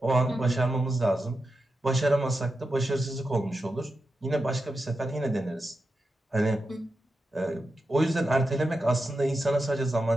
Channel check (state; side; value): normal; both; correlation 0.89